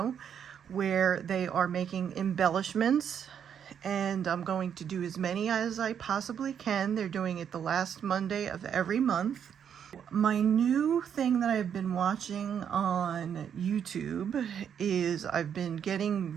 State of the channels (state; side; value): quieter; left; 8.3 dB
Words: where they are making embellishments, and I'm going to do as many as I possibly can. They're doing it the last Monday of every month. My new thing that I've been watching on YouTube is I've been getting